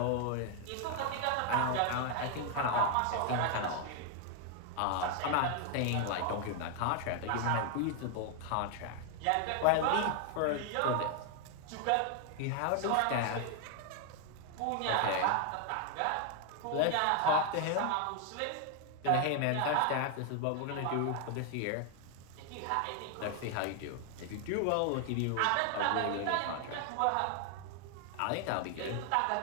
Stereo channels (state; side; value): different; both; correlation 0.00